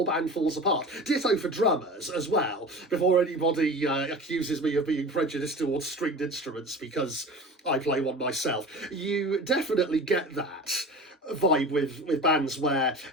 band falls apart. Ditto for drummers as well, before anybody accuses me of being prejudiced towards stringed instruments because I play one myself. You definitely get that vibe with bands where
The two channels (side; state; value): both; normal; correlation 0.36